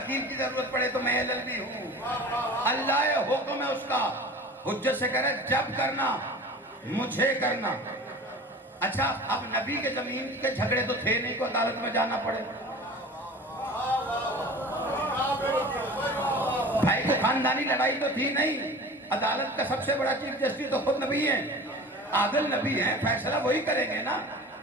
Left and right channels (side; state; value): both; normal; correlation 0.39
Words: کی ضرورت پڑے تو میں LLB ہوں. اللہ حکم ہے اس کا. حجت سے کہہ رہے جب کرنا مجھے کرنا. اچھا اب نبی کے زمین کے جھگڑے تو تھے نہیں کو عدالت میں جانا پڑے. بھائی کو خاندانی لڑائی تو تھی نہیں. عدالت کا سب سے بڑا چیف جسٹس تو خود نبی ہیں, عادل نبی ہیں, فیصلہ وہی کریں گے نا.